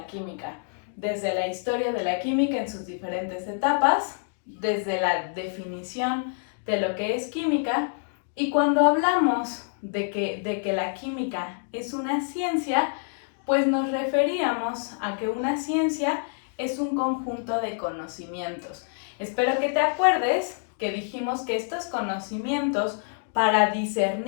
química, desde la historia de la química en sus diferentes etapas, desde la definición de lo que es química, y cuando hablamos de que la química es una ciencia, pues nos referíamos a que una ciencia es un conjunto de conocimientos. Espero que te acuerdes que dijimos que estos conocimientos, para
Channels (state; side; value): silent; right; digital silence